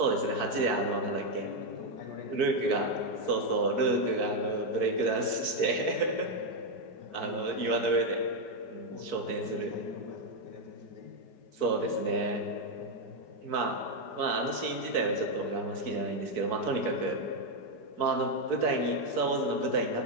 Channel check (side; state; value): right; late; 4.6 ms